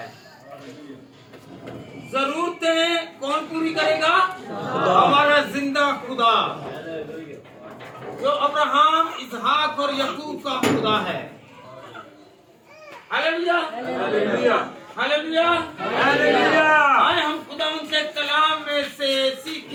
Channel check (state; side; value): identical; both; correlation 1.00